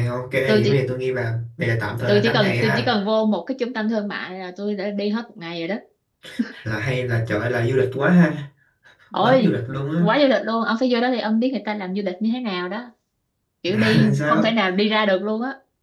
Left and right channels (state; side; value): identical; both; correlation 1.00